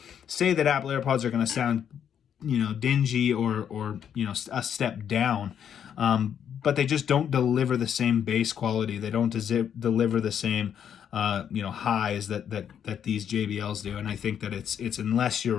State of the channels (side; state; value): right; quieter; 8.7 dB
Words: say that Apple AirPods are going to sound, you know, dingy or you know, a step down. But they just don't deliver the same bass quality. They don't deliver the same, you know, highs that these JBLs do. And I think that it's unless you're